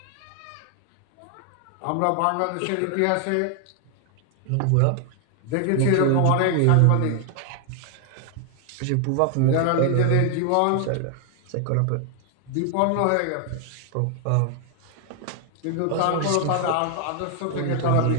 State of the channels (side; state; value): both; different; correlation 0.00